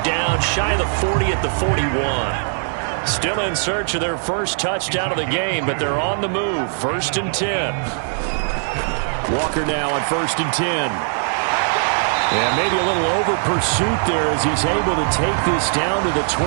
down shy of the 40 at the 41. Still in search of their first touchdown of the game, but they're on the move. 1st and 10. Walker now on 1st and 10. And maybe a little over pursuit there as he's able to take this down to the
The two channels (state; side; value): silent; left; 64 dB below the other